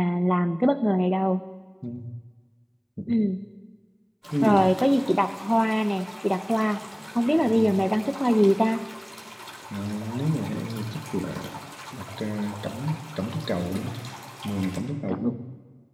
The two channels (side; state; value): both; identical; correlation 1.00